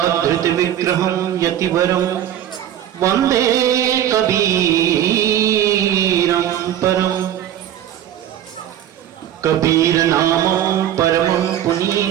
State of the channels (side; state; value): left; quieter; 11.1 dB